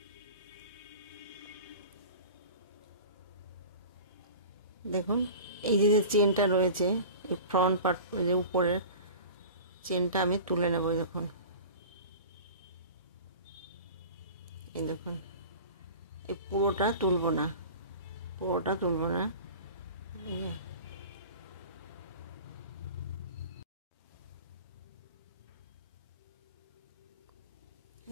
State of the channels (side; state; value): both; inverted; correlation -0.38